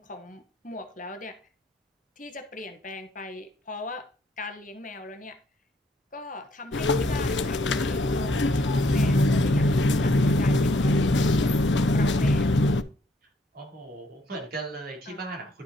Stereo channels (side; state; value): both; normal; correlation 0.68